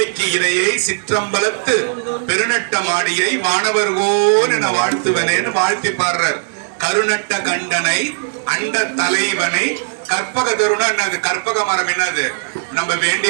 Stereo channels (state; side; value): silent; left; digital silence